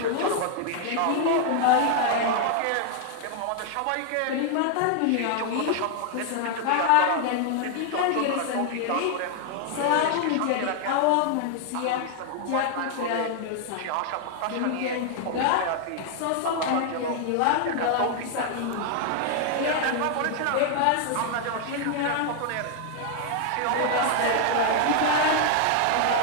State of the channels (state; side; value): different; both; correlation 0.00